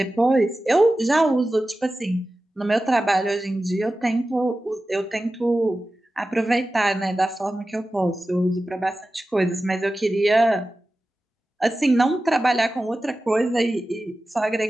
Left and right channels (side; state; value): both; normal; correlation 0.94